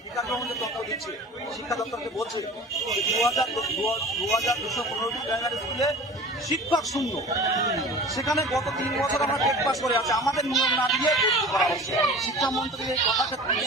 বিকাশ ভবন যে তথ্য দিচ্ছে, শিক্ষা দপ্তরকে বলছে 2,215টি প্রাইমারি স্কুলে শিক্ষক শূন্য। সেখানে গত 3 বছর আমরা টেট পাস করে আছে, আমাদের নিয়ম না দিয়ে ভর্তি করা হচ্ছে। শিক্ষামন্ত্রী এই কথাকে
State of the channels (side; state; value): both; normal; correlation 0.39